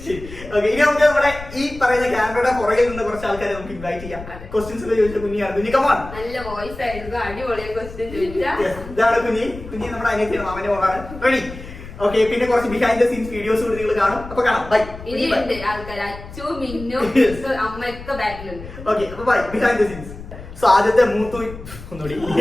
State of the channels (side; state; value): left; noise; rumble, 14 dB below the sound